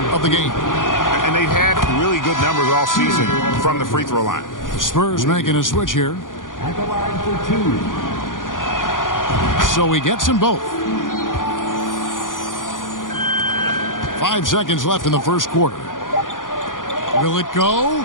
of the game. And they've had really good numbers all season from the free throw line. The Spurs making a switch here. At the line for 2. So he gets them both. 5 seconds left in the first quarter. Will it go?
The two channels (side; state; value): right; late; 0.89 ms